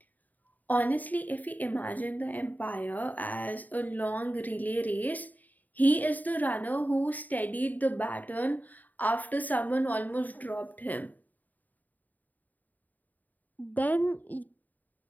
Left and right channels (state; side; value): late; right; 0.082 ms